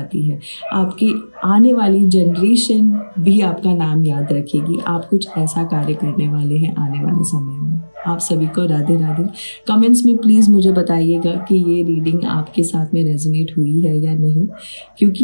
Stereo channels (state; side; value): inverted; both; correlation -1.00